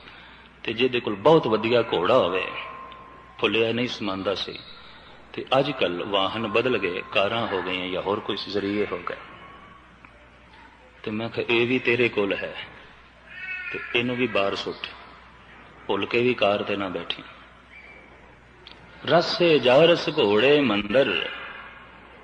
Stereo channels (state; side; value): identical; both; correlation 1.00